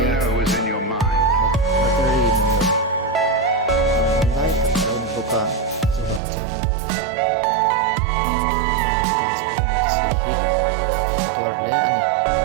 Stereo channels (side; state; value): left; drops out; at 6.2 s